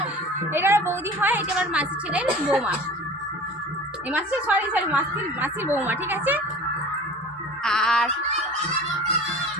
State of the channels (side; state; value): both; normal; correlation 0.40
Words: এটা বৌদি হয়, এটা আমার মাসি ছেলের বৌমা, এই মাসি সরি মাসির বৌমা, ঠিক আছে। আর